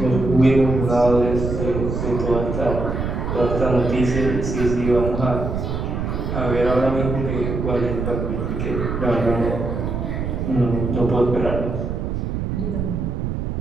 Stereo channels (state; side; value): noise; right; rumble, 3 dB below the sound